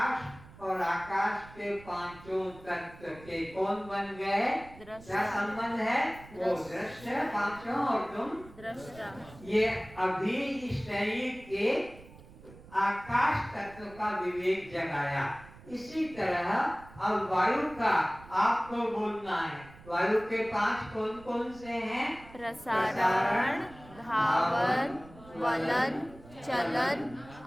और आकाश के पांचों तत्व के कौन बन गए? दृष्टा। क्या संबंध है? वो दृश्य पांचों और तुम दृष्टा। ये अभी इस शरीर के आकाश तत्व का विवेक जगाया। इसी तरह अब वायु का आपको बोलना है। वायु के पांच कौन कौन से हैं? प्रसारण, धावन, वलन, चलन,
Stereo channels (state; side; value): noise; right; rumble, 20 dB below the sound